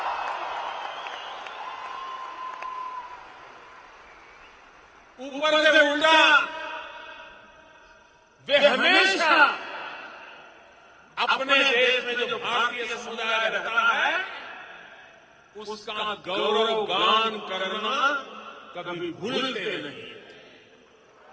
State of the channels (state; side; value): identical; both; correlation 1.00